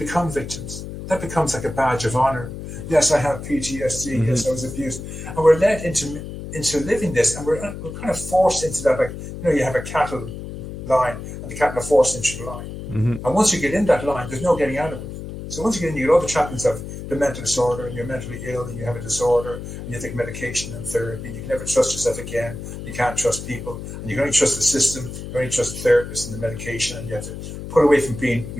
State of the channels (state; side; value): noise; left; hum, 9 dB below the sound